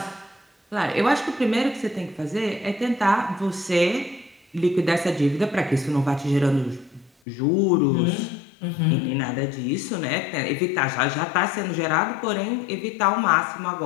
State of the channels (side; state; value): right; drops out; at 7.1 s